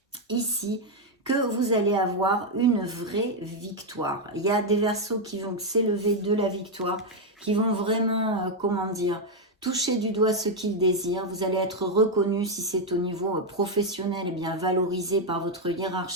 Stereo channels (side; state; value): both; normal; correlation 0.02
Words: ici que vous allez avoir une vraie victoire. Il y a des Verseaux qui vont s'élever de la victoire, qui vont vraiment, comment dire, toucher du doigt ce qu'ils désirent. Vous allez être reconnu si c'est au niveau professionnel, eh bien valorisé par votre